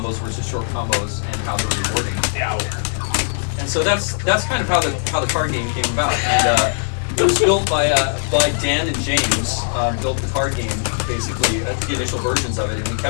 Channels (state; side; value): silent; right; 66 dB below the other